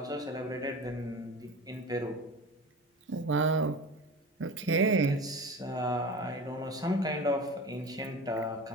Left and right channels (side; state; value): both; normal; correlation 0.33